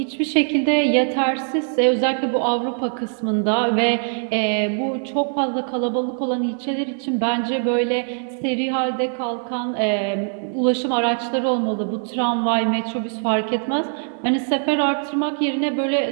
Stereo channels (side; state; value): left; silent; 64 dB below the other